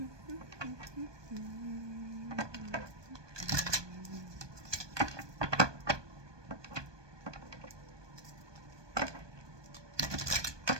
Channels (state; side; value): late; left; 1.2 ms